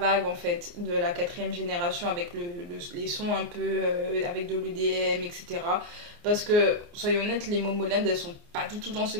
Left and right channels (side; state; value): left; late; 29 ms